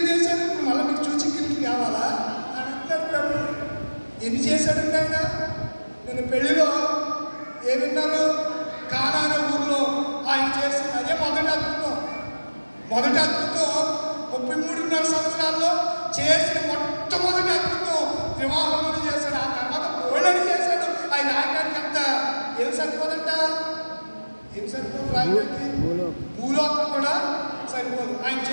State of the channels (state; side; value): inverted; both; correlation -1.00